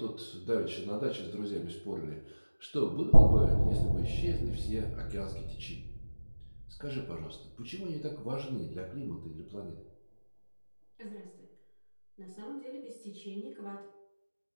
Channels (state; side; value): inverted; both; correlation -1.00